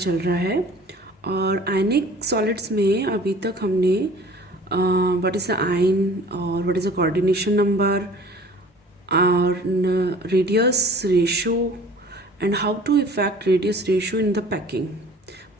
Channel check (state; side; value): normal; both; correlation 0.47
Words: रहा है और आयनिक सॉलिड्स में अभी तक हमने व्हाट इज़ द आयन और what is the coordination number और radius ratio and how to effect radius ratio in the packing.